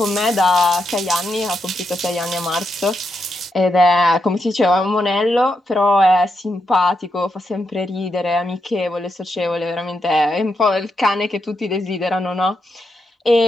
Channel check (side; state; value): both; normal; correlation 0.83